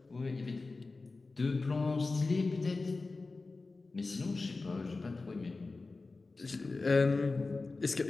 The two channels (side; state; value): right; quieter; 3.7 dB